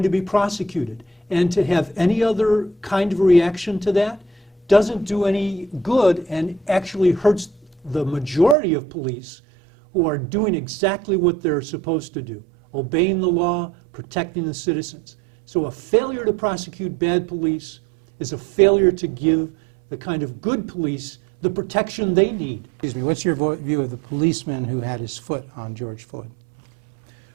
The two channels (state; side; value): drops out; left; at 8.6 s